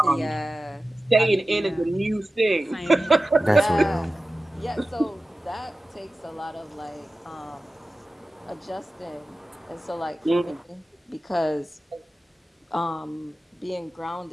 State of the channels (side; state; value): both; normal; correlation 0.95